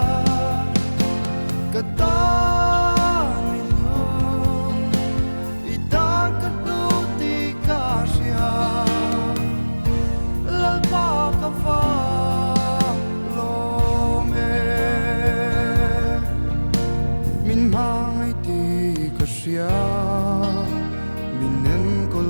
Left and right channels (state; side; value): inverted; both; correlation -1.00